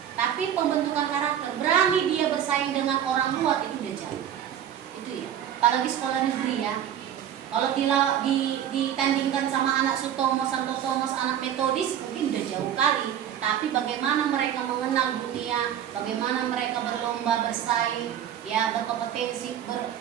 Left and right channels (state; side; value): quieter; left; 9.9 dB